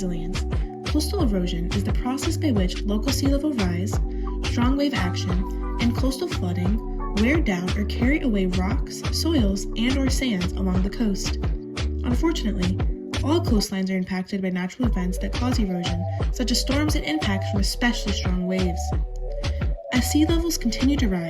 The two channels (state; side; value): identical; both; correlation 1.00